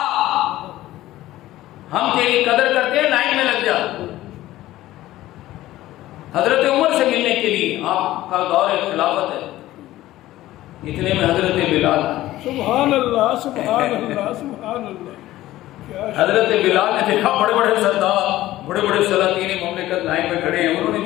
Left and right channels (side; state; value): right; quieter; 15.5 dB